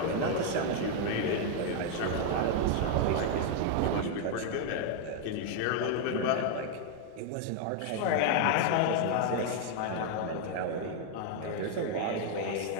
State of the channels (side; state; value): both; different; correlation 0.00